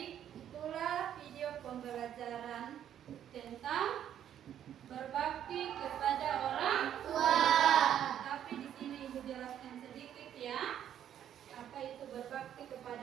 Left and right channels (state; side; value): quieter; left; 10.2 dB